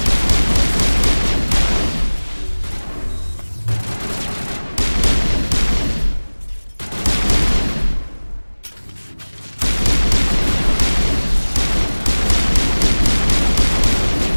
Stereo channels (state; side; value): inverted; both; correlation -1.00